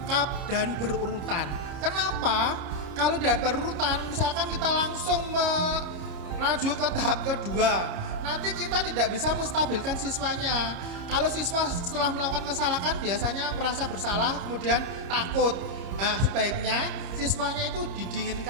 dan berurutan. Kenapa? Kalau tidak berurutan, misalkan kita langsung melaju ke tahap kedua, nanti kita tidak bisa menstabilkan siswanya. Kalau siswa setelah melakukan kesalahan biasanya merasa bersalah, kemudian takut. Nah, sebaiknya siswanya itu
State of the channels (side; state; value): left; late; 30 ms